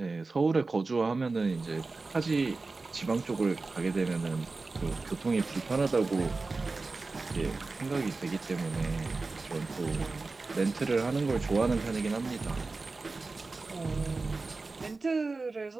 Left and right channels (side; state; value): left; quieter; 3.7 dB